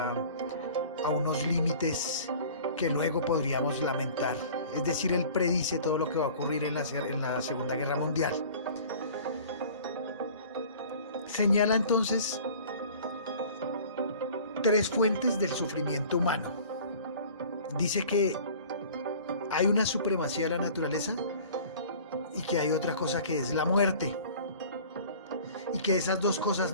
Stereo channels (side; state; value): both; inverted; correlation -0.45